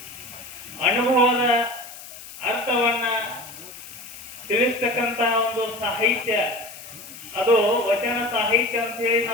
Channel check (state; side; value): noise; left; hiss, 15 dB below the sound